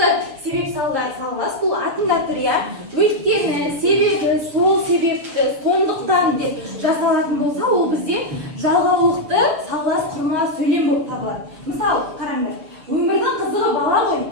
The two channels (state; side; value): late; left; 6.9 ms